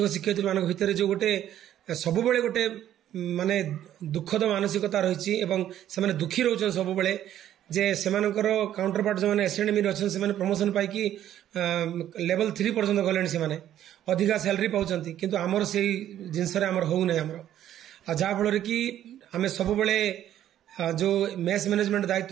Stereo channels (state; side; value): quieter; left; 11.6 dB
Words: ଶିକ୍ଷୟିତ୍ରୀମାନଙ୍କ ଭିତରେ ଯେଉଁ ଗୋଟେ ସବୁବେଳେ ଗୋଟେ ମାନେ ଦୁଃଖଦ ମାନସିକତା ରହିଛି ଏବଂ ସେମାନେ ଦୁଃଖୀ ରହୁଛନ୍ତି ସବୁବେଳେ ଯେ ସେମାନଙ୍କର କାଉଣ୍ଟରପାର୍ଟ ଯେଉଁମାନେ ଏସ୍ଏନ୍ଏମ୍ରେ ଅଛନ୍ତି ସେମାନେ ପ୍ରମୋସନ ପାଇକି ଲେଭେଲ 3 ପର୍ଯ୍ୟନ୍ତ ଗଲେଣି, ସେମାନେ ଅଧିକା ସାଲାରୀ ପାଉଛନ୍ତି କିନ୍ତୁ ଆମର ସେଇ ଜିନିଷରେ ଆମର ହଉନାହିଁ ଆମର। ଆଉ ଯାହାଫଳରେ କି ଆମେ ସବୁବେଳେ ଯେଉଁ ମେସ୍ ମ୍ୟାନେଜମେଣ୍ଟ